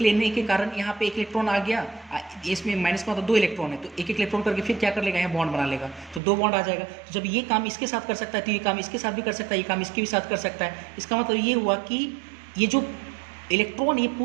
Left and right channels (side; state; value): left; drops out; at 6.2 s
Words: लेने के कारण यहाँ पे एक इलेक्ट्रॉन आ गया, इसमें माइनस का मतलब 2 इलेक्ट्रॉन है, तो एक इलेक्ट्रॉन करके फिर क्या कर लेगा, यहाँ बॉन्ड बना लेगा, तो 2 बॉन्ड आ जाएगा। तो जब ये काम इसके साथ कर सकता है तो ये काम इसके साथ भी कर सकता है, ये काम इसके भी साथ कर सकता है। इसका मतलब ये हुआ कि ये जो इलेक्ट्रॉन ये